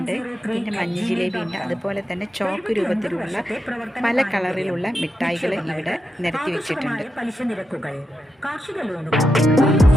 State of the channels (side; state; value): both; normal; correlation 0.87